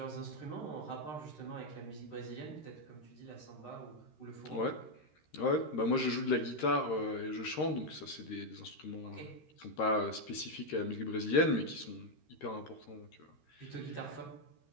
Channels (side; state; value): right; late; 13 ms